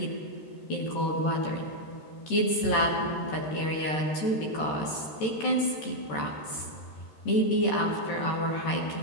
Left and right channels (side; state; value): right; late; 13 ms